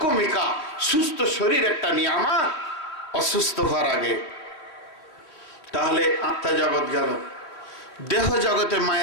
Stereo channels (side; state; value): right; late; 3.3 ms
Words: সুস্থ শরীর একটা নিয়ামত অসুস্থ হওয়ার আগে। তাহলে আত্মা জগৎ গেল, দেহ জগতে